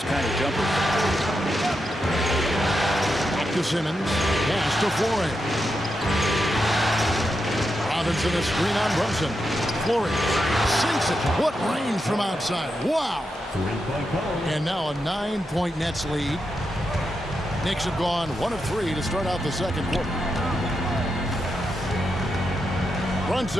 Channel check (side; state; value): both; normal; correlation 0.86